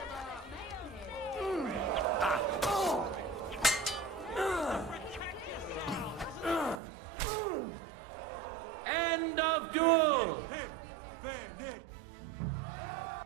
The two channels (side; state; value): left; drops out; at 6.8 s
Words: End of duel!